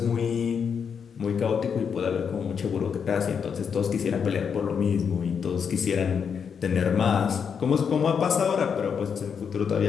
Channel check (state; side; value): quieter; right; 6.8 dB